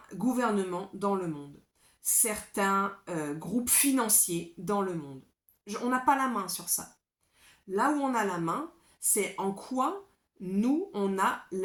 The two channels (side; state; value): both; identical; correlation 1.00